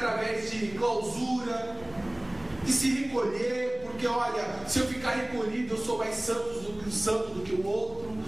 de clausura, de se recolher, porque olha, se eu ficar recolhido, eu sou mais santo do que o outro,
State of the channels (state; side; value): noise; right; hum, 28 dB below the sound